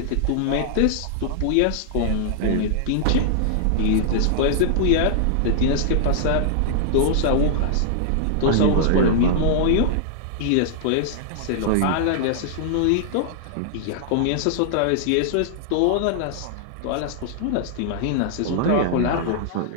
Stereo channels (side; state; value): both; different; correlation -0.01